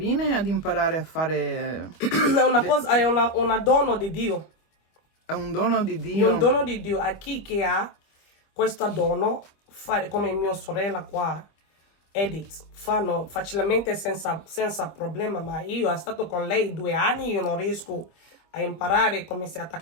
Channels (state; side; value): late; right; 25 ms